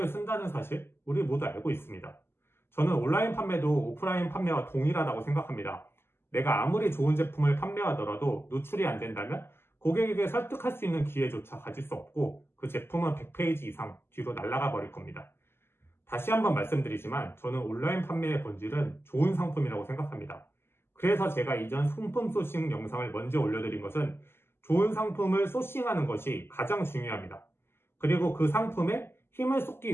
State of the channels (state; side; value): late; right; 0.12 ms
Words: 쓴다는 사실 우리 모두 알고 있습니다. 저는 온라인 판매도 오프라인 판매와 동일하다고 생각합니다. 내가 아무리 좋은 제품을 판매하더라도 노출이 안 된다면 고객에게 설득할 수 있는 기회조차 가질 수 없고 그 제품은 100페이지 이상 뒤로 날아가 버릴 겁니다. 다시 한번 말씀드리지만 저는 온라인 판매의 본질은 좋은 상품이라고 생각합니다. 그래서 제가 이전 상품 소싱 영상을 먼저 올려드린 것은 좋은 상품을 소싱하는 것이 가장 중요합니다. 그리고 그 상품에 힘을 쏟기